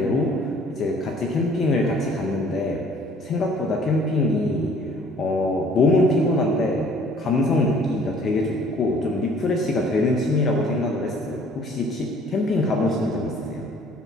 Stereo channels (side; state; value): both; normal; correlation 0.55